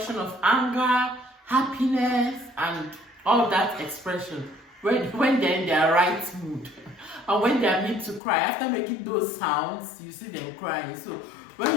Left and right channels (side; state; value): right; drops out; at 8.2 s